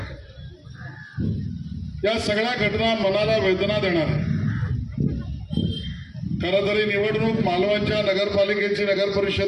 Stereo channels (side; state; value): both; identical; correlation 1.00